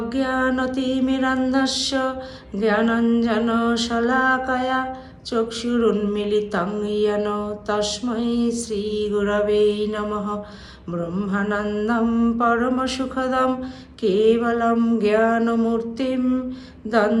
জ্ঞানাঞ্জনশলাকয়া চক্ষুরুন্মিলিतं येन তস্मै শ্রী গুরবে নমঃ। ব্রহ্মানন্দং পরমসুখদং কেবলং জ্ঞানমূর্তিং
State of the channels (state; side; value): identical; both; correlation 1.00